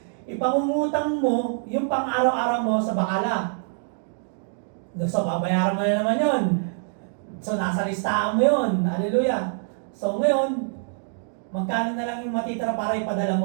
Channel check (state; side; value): silent; left; 62 dB below the other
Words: Ipangungutang mo yung pang-araw-araw mo sa bakala. So, babayaran mo na naman yun. So, nasa listahan mo yun. Hallelujah. So, ngayon, magkano na lang yung matitira para ipadala